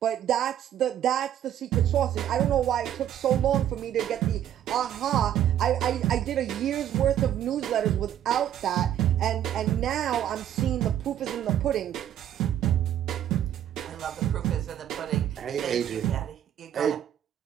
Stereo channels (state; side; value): quieter; left; 10.8 dB